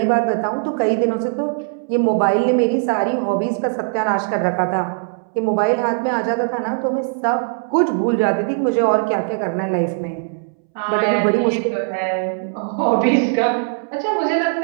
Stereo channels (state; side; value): silent; left; 66 dB below the other